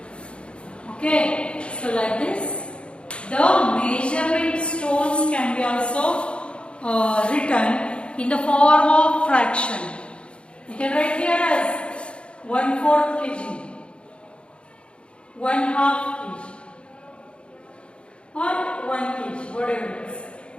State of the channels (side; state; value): right; late; 0.057 ms